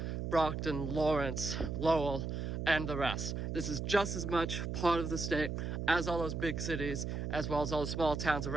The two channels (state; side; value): noise; right; hum, 3 dB below the sound